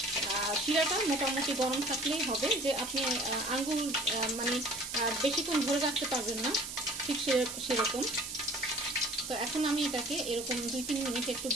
শিরাটা মোটামুটি গরম থাকলেই হবে, যে আপনি আঙ্গুল মানে বেশিক্ষণ ধরে রাখতে পারবেন না, ঠিক সেরকম। তো এখন আমি এটাকে এরকম 2-3 মিনিট একটু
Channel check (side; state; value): right; noise; hiss, 7 dB below the sound